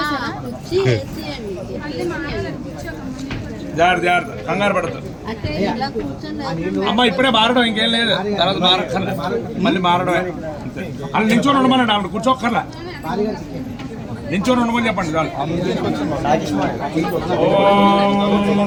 కంగారు పడదు అమ్మ, ఇప్పుడే మారడం ఇంకేం లేదు, తర్వాత మారక్కర్లే, మళ్ళీ మారడమే. అలా నించొని ఉండమనండి, ఆవిడ కూర్చోక్కర్లా, నించొని ఉండమని చెప్పండి చాలు.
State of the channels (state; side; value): identical; both; correlation 1.00